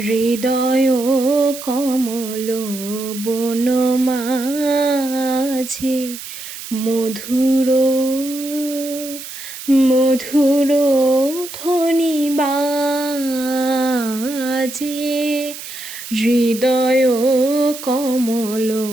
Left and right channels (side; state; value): right; noise; hiss, 11 dB below the sound